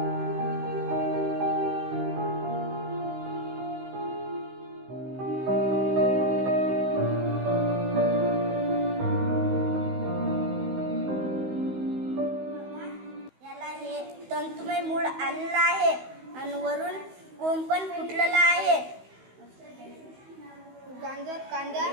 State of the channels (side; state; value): left; late; 16 ms